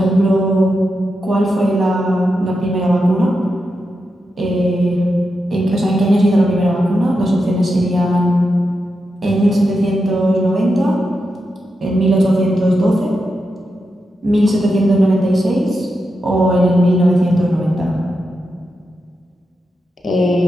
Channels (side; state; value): both; normal; correlation 0.87